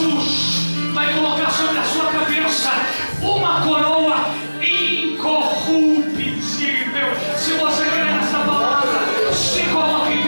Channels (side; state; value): both; inverted; correlation -1.00